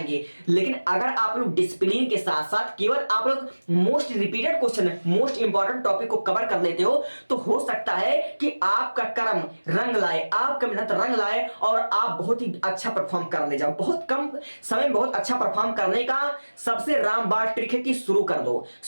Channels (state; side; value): inverted; both; correlation -1.00